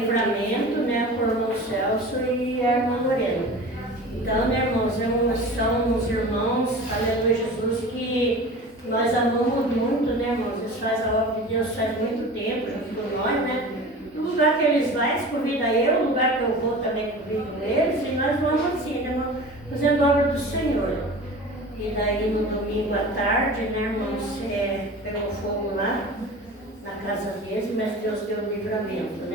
né, por irmão Celso e a irmã Lorena. Então, né, irmãos, são os irmãos, aleluia, Jesus, que nós amamos muito, né, irmãos? Eles fazem a obra de Deus faz muito tempo, junto com nós, né? O lugar que eles vão, eles convidam eu, o lugar que eu vou também convido eles, e nós vamos assim, né, irmão? Fazendo a obra do Senhor. E daí no domingo à tarde, né, irmãos, pegou fogo lá na casa deles, mas Deus deu livramento,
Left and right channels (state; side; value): normal; both; correlation 0.36